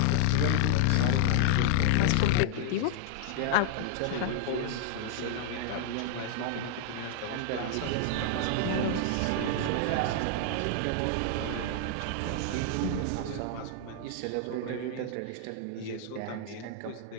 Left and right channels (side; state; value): both; different; correlation -0.01